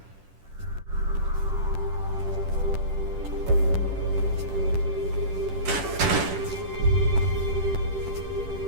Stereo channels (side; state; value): left; late; 10 ms